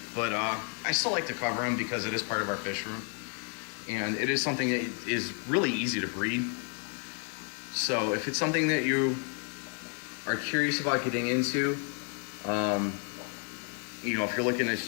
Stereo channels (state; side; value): quieter; right; 38.1 dB